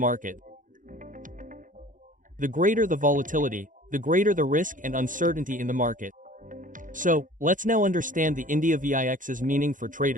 The greater the volatility, the greater the risk and uncertainty in the market. So, let's now understand the India VIX's meaning for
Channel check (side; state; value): left; late; 0.38 ms